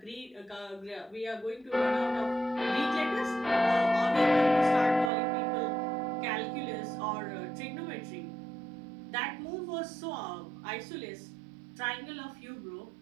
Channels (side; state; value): left; drops out; at 5.1 s